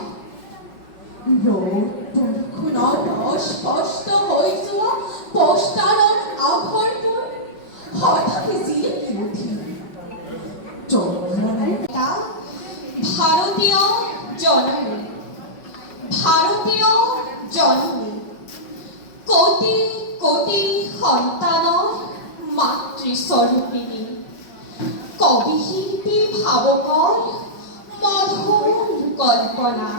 ৰ'দ বৰষুণত অস্পষ্ট হৈ যোৱা পষ্টাৰৰ আখৰবোৰ হঠাৎ জিলিকি উঠিল। ভাৰতীয় জননী, ভাৰতীয় জননী, কোটি কোটি সন্তানৰ মাতৃস্বৰূপিণী, কবি শিল্পী ভাৱকৰ মধুৰ কল্পনা,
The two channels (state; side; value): late; right; 5.4 ms